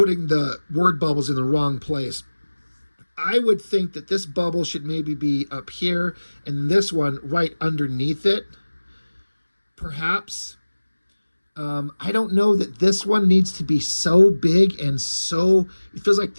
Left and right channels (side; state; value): both; inverted; correlation -1.00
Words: the word bubbles in the wrong place. I would think that this bubble should maybe be up here and this one right underneath it, perhaps. I don't know that this one needs to be so big and so, it feels like